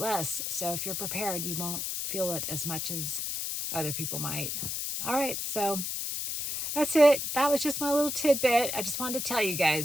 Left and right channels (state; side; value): noise; left; hiss, 3 dB below the sound